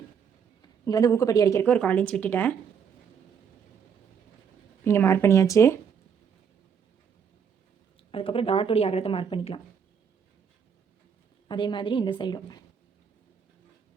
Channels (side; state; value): left; quieter; 7.1 dB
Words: இங்கே வந்து ஊக்கப்பட்டி அடிக்கிறதுக்கு ஒரு 1/4 இன்ச் விட்டுட்டேன். இங்கே மார்க் பண்ணியாச்சு. அதுக்கப்புறம் டாட்டோடைய அகலத்தை மார்க் பண்ணிக்கலாம். அதே மாதிரி இந்த சைடும்.